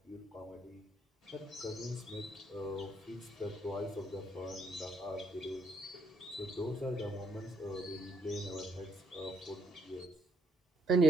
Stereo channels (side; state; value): both; normal; correlation 0.72